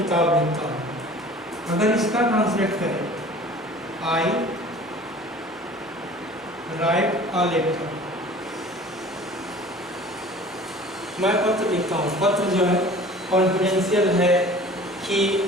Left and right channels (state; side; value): normal; both; correlation 0.45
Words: लिखता हूँ। अगर इसका ट्रांसलेट करें, आई राइट अ लेटर, मैं पत्र लिखता हूँ। पत्र जो है कॉन्फिडेंशियल है कि